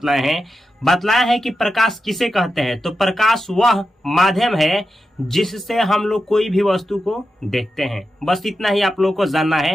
हैं। बतलाया है कि प्रकाश किसे कहते हैं। तो प्रकाश वह माध्यम है जिससे हम लोग कोई भी वस्तु को देखते हैं। बस इतना ही आप लोगों को जानना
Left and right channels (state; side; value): normal; both; correlation 0.90